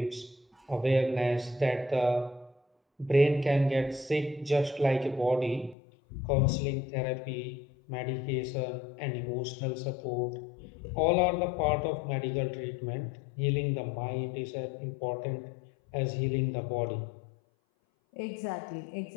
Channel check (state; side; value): drops out; right; at 5.8 s